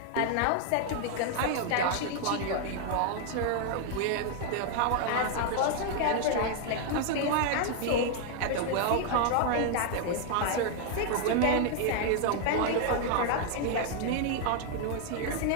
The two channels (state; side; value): different; both; correlation 0.00